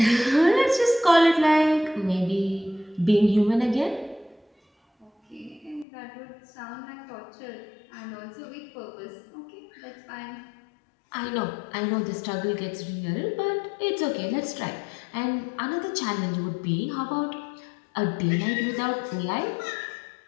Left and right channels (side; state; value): right; drops out; at 5.9 s